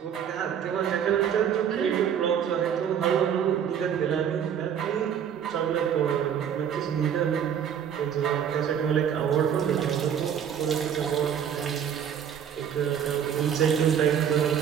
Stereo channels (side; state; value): left; quieter; 8.6 dB